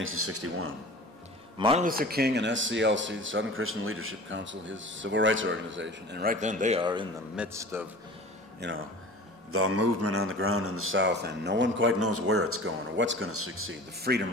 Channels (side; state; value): both; normal; correlation 0.40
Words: Martin Luther King and SCLC, the Southern Christian Leadership Council, his civil rights organization, and right then they are in the midst of the movement on the ground in the South, and no one quite knows where it's going or what's going to succeed. The